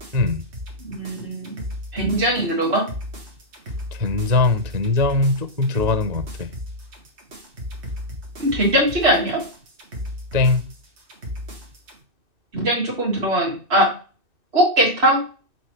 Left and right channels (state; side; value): late; left; 2.6 ms